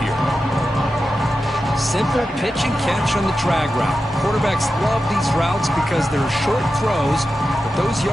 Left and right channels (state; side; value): normal; both; correlation 0.91